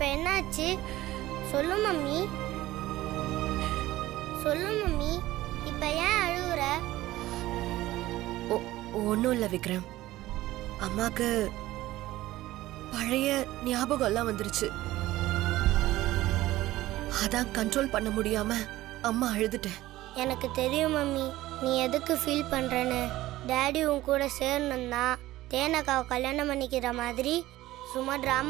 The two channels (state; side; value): quieter; left; 16.3 dB